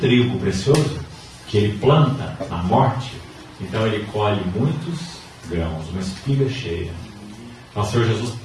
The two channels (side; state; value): both; identical; correlation 1.00